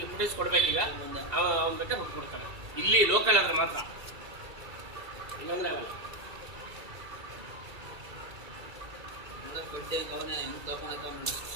ಫುಟೇಜ್ ಕೊಡ್ಬೇಕೀಗ. ಅವ್ನು ಬೇಕಾದ್ರೆ ಕೊಡ್ತಾನೆ. ಇಲ್ಲಿ ಲೋಕಲ್ ಆದ್ರೆ ಮಾತ್ರ, ಇಲ್ಲಾಂದ್ರೆ ಆಗಲ್ಲ.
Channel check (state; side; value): late; left; 2.3 ms